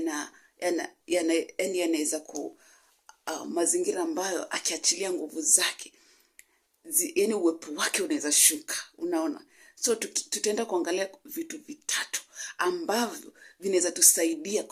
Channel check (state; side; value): identical; both; correlation 1.00